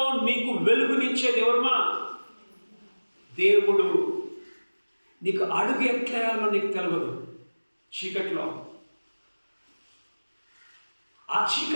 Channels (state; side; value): inverted; both; correlation -1.00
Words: నీకు వెలుగునిచ్చేది ఎవరుమా? దేవుడు. నీకు అడుగు ఎట్లేయాలో నీకు తెలియదు చీకట్లో. ఆ